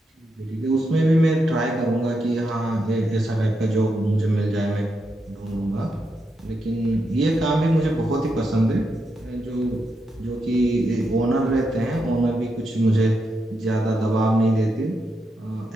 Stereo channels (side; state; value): both; normal; correlation 0.84